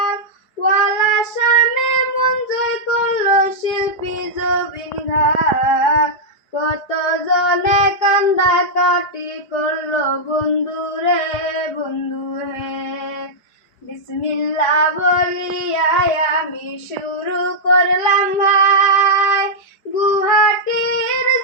গলার সামনে মন জয় করলো শিল্পী জবিন ঘাগ। কত জনে কান্দা কাটি করলো বন্ধু রে বন্ধু হে। বিসমিল্লাহ বলিয়া আমি শুরু করলাম ভাই, গুহাটির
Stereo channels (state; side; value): late; right; 5.0 ms